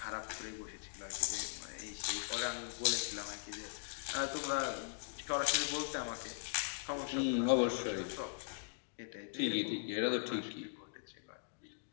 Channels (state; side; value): silent; right; digital silence